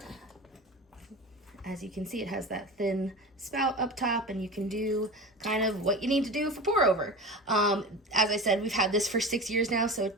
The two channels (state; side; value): normal; both; correlation 0.31